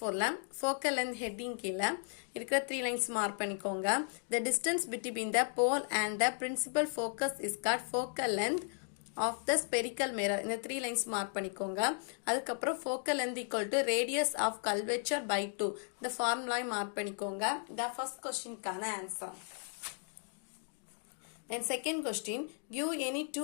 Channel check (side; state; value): right; silent; 54 dB below the other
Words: focal length heading கீழே இருக்கிற 3 lines mark பண்ணிக்கோங்க. The distance between the pole and the principal focus is called focal length of the spherical mirror. இந்த 3 lines mark பண்ணிக்கோங்க. அதுக்கப்புறம் focal length equal to radius of curvature by 2. இந்த formula mark பண்ணிக்கோங்க. The first question கான answer. Then second question, give any